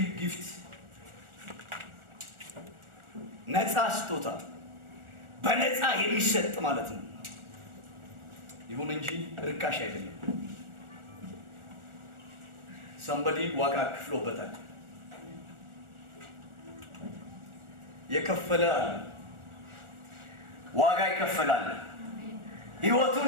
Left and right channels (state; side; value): late; left; 1.4 ms